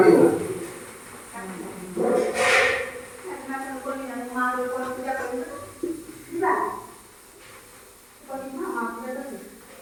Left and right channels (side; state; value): both; identical; correlation 1.00